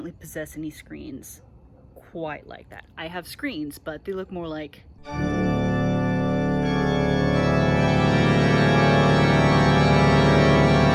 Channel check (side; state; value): both; identical; correlation 1.00